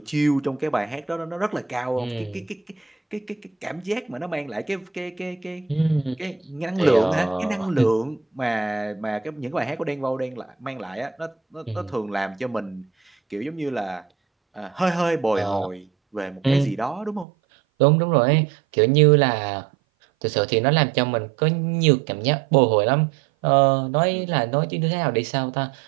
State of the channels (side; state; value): left; drops out; at 17.2 s